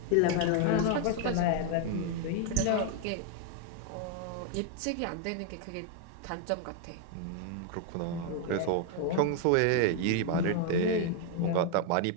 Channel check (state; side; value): different; both; correlation 0.00